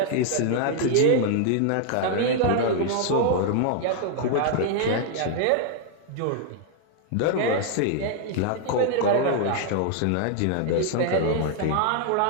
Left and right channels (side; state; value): both; different; correlation 0.00